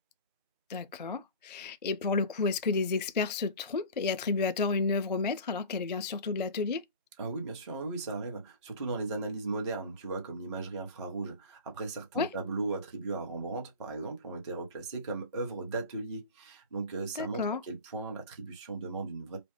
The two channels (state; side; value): inverted; both; correlation -0.35